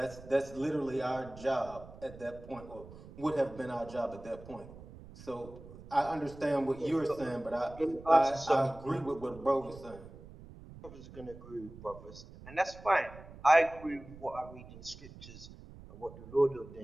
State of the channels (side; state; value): right; noise; rumble, 17 dB below the sound